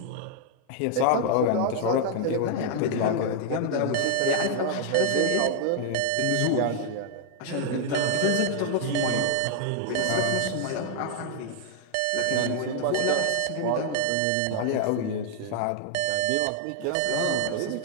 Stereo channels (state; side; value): different; both; correlation 0.00